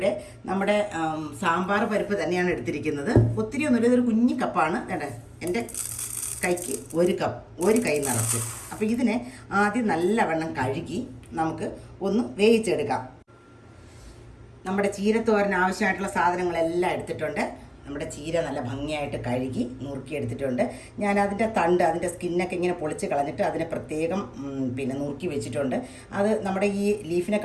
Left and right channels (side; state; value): both; identical; correlation 1.00